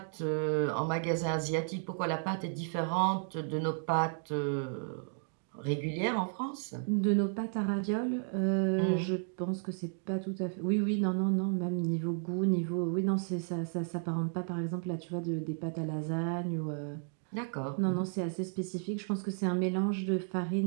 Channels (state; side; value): silent; left; 56 dB below the other